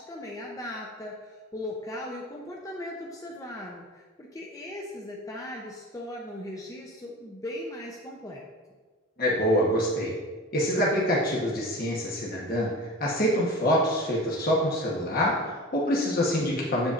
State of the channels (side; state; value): both; normal; correlation 0.35